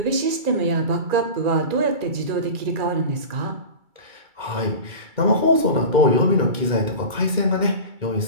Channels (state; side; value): late; left; 2.3 ms